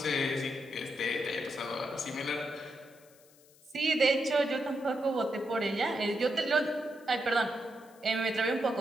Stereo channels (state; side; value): noise; left; hiss, 27 dB below the sound